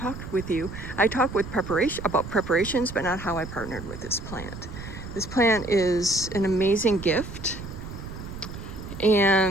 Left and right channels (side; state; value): right; noise; rumble, 11 dB below the sound